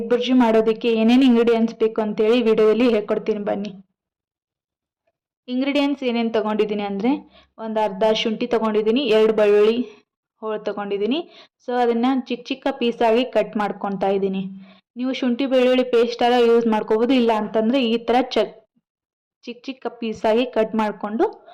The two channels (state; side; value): identical; both; correlation 1.00